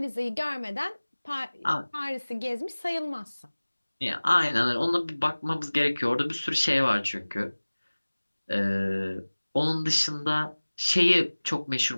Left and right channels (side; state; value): both; inverted; correlation -1.00